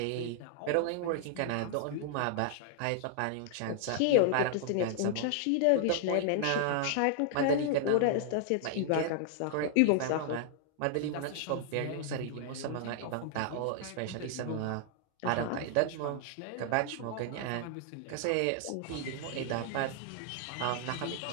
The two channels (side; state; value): both; different; correlation 0.00